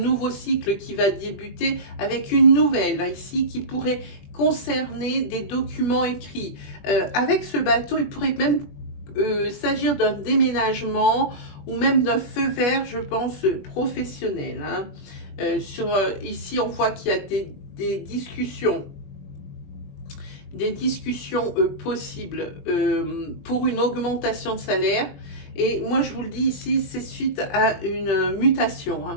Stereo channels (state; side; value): late; right; 21 ms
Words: cycle qui va débuter avec une nouvelle, là, ici, qui pourrait concerner des documents écrits. Avec ce bateau, il pourrait même s'agir d'un déménagement ou même d'un feu vert, je pense, professionnel. Hein. Ici, on voit qu'il y a des discussions possibles pour une augmentation de salaire. Et moi, je vous le dis ici, c'est suite à une mutation.